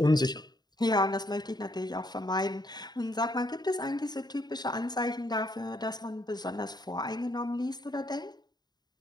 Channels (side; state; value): right; late; 0.20 ms